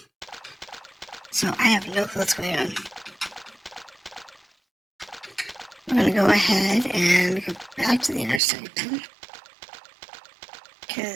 So I have no clue what's going on. We're going to go ahead and go back to the inner sanctum,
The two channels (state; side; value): drops out; left; at 8.4 s